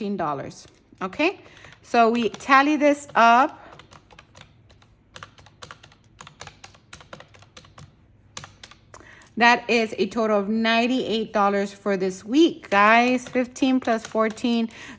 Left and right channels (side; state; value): both; identical; correlation 1.00